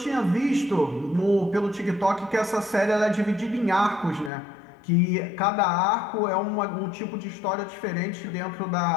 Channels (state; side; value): drops out; right; at 4.3 s